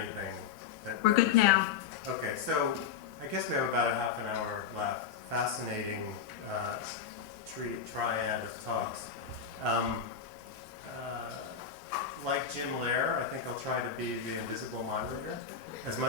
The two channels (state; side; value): quieter; right; 7.1 dB